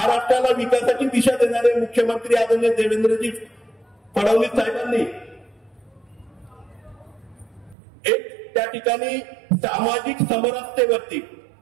विकासाची दिशा देणारे मुख्यमंत्री आदरणीय देवेंद्रजी फडणवीस साहेबांनी एक त्या ठिकाणी सामाजिक समरसतेवरती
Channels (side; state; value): left; drops out; at 7.8 s